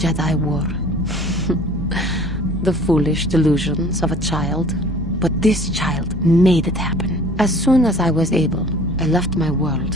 wore. The foolish delusions of a child. But this child made it happen. As soon as I was able, I left my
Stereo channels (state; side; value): normal; both; correlation 0.48